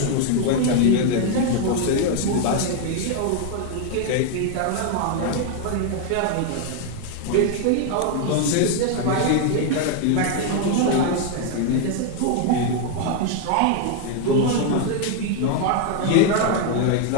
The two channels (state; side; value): different; both; correlation 0.00